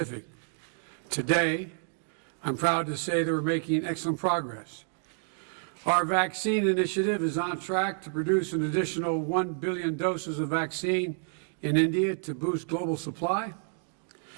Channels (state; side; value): silent; left; digital silence